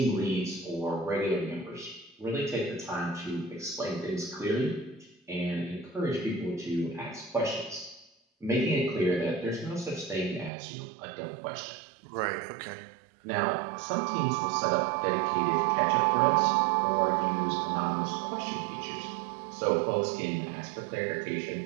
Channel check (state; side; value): drops out; left; at 10.5 s